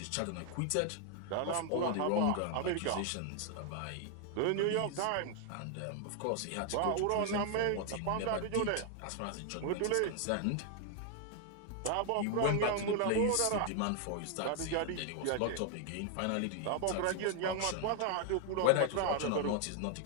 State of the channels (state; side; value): different; both; correlation 0.00